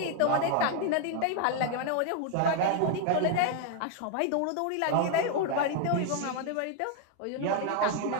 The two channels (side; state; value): both; different; correlation 0.00